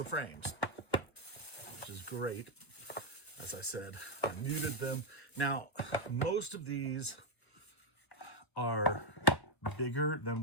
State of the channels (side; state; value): right; late; 1.1 ms